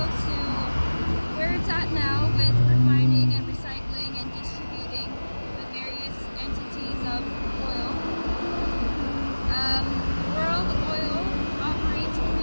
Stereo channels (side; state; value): both; inverted; correlation -1.00